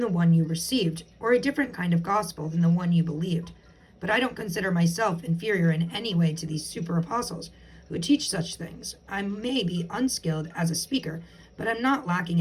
one you received, or a different kind of gospel than the one you believed. But I don't consider myself inferior in any way to these super apostles who teach such things. I may be unskilled as a speaker, but I'm not lacking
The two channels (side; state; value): both; identical; correlation 1.00